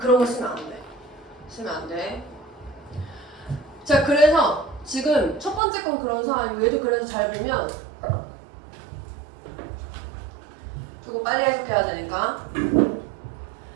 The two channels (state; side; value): drops out; left; at 5.6 s